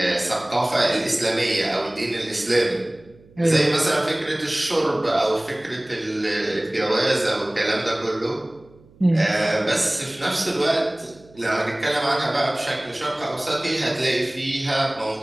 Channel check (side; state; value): right; noise; hum, 27 dB below the sound